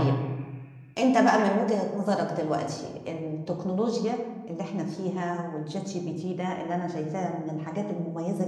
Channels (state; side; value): identical; both; correlation 1.00